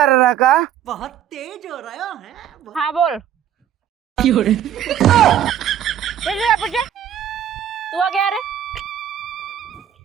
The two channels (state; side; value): quieter; left; 10.1 dB